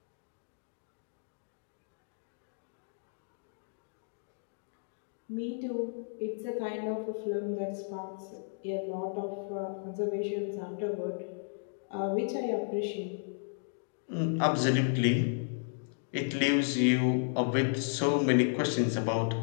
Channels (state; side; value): silent; right; digital silence